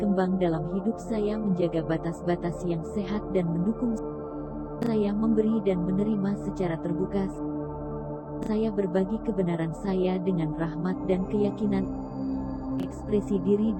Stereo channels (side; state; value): both; identical; correlation 1.00